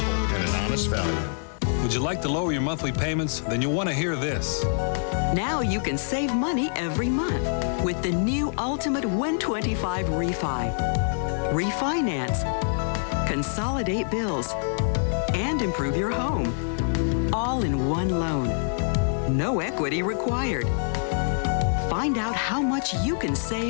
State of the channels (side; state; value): right; silent; digital silence